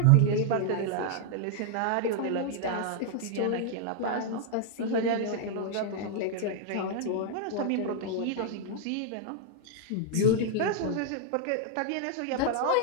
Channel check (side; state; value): both; different; correlation -0.01